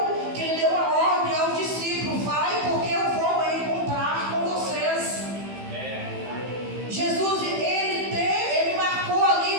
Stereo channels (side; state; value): left; late; 15 ms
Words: que ele deu a ordem aos discípulos: vai, porque eu vou encontrar com vocês. Jesus ele marcou